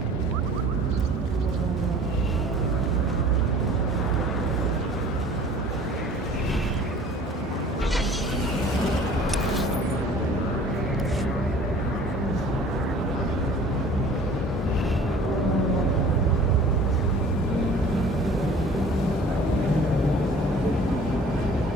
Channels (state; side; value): normal; both; correlation 0.48